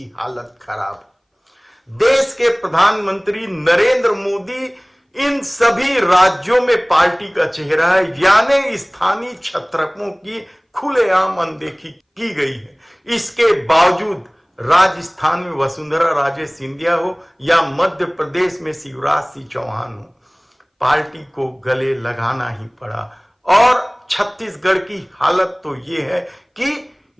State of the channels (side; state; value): both; identical; correlation 1.00